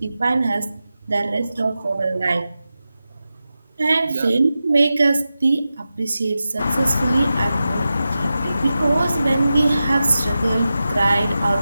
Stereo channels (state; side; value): inverted; both; correlation -0.93